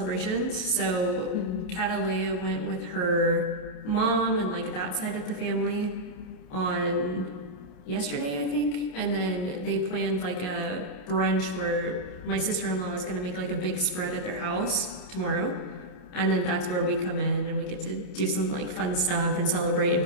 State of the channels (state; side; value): late; right; 28 ms